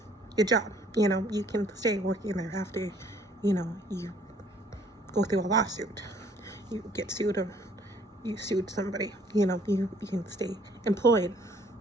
your job. You can stay working there after, you go through a lawsuit. You get sued or you sued somebody. You can stay employed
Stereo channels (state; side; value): normal; both; correlation 0.60